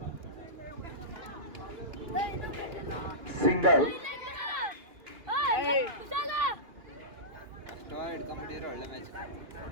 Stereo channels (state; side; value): late; left; 2.4 ms